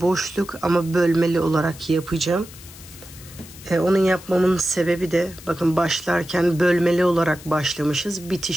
boşluk ama bölmeli olarak yapacağım. Onun yapmamın sebebi de bakın başlarken bölmeli olarak başlamışız.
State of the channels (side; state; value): left; noise; hiss, 18 dB below the sound